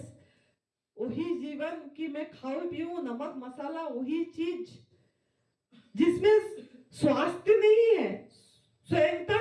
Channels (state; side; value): identical; both; correlation 1.00